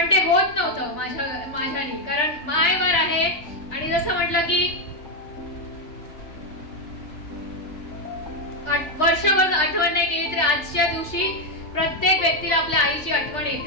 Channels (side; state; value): right; late; 3.4 ms